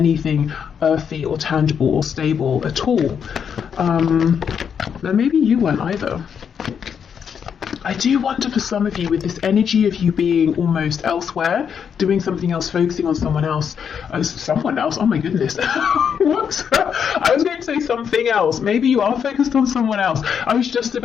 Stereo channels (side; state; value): right; quieter; 7.4 dB